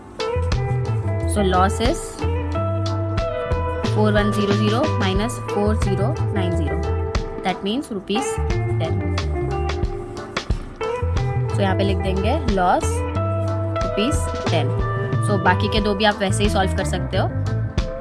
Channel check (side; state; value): both; identical; correlation 1.00